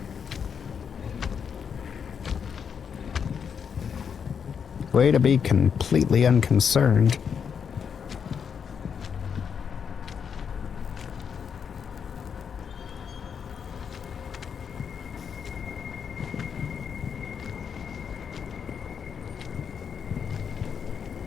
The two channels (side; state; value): right; quieter; 7.0 dB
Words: Way to be completely unconcerned.